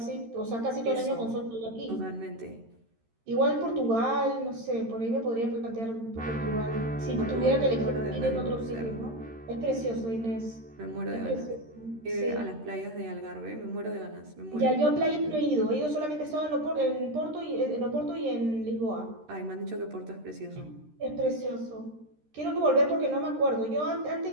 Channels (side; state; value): left; late; 13 ms